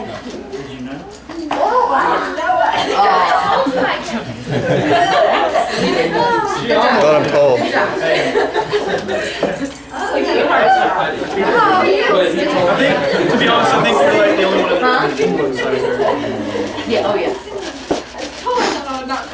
Did you know? Thought I'm cold. I think, to be honest, I think you're like the only one that Yeah, oh yeah. Oh, no, not so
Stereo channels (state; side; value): identical; both; correlation 1.00